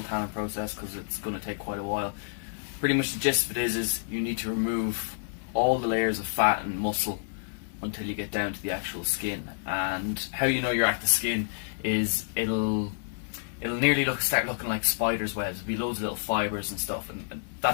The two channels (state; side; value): silent; right; digital silence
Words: tanning process because it's going to take quite a while. Pretty much the gist of it is you need to remove all the layers of fat and muscle until you get down to the actual skin. And how you know you're at the skin is it'll nearly start looking like spider's webs. There'll be loads of little fibres and stuff, and